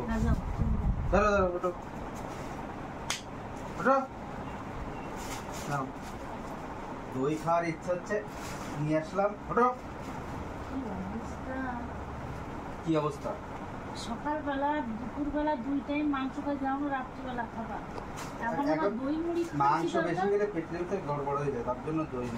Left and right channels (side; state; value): both; identical; correlation 1.00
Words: না যাও। ধরো ধরো ওঠো ওঠো। নাও, দই খাওয়ার ইচ্ছা হচ্ছে, নিয়ে আসলাম। ওঠো। কি অবস্থা? সকালবেলা দুপুরবেলা দুই টাইম মাংস খাই, যাও রাত্রিবেলা খাবার, এখন আবার দই মুড়ি মাংস বেশি খেলে পেটের ভিতরে গড়বড় হয়ে যায়, তার জন্য দই